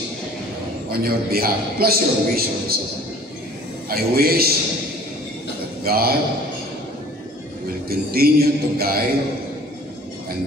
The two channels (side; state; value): both; normal; correlation 0.50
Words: on your behalf, plus your wish also. I wish that God will continue to guide